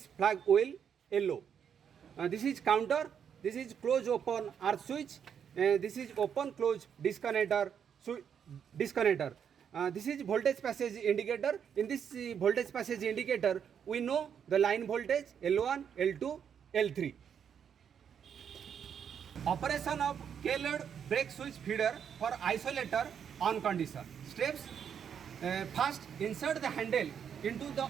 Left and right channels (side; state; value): left; quieter; 7.9 dB